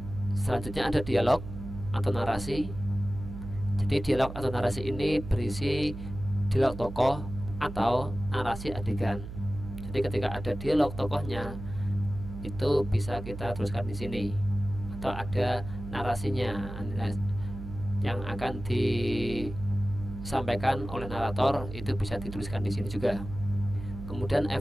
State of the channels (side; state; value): right; noise; hum, 10 dB below the sound